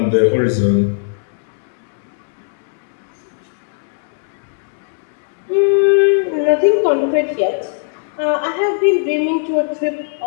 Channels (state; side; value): silent; right; digital silence